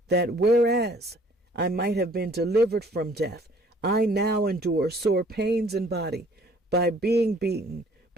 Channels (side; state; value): both; normal; correlation 0.57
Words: that whereas I might have been delivered from death, I now endure sore pains in body by being beaten,